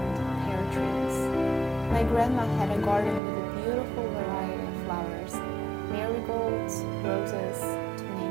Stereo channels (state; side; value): drops out; left; at 3.2 s